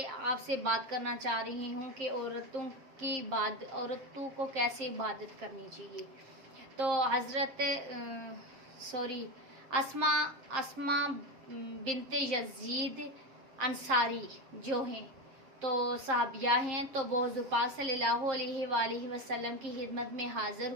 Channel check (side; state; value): left; late; 7.5 ms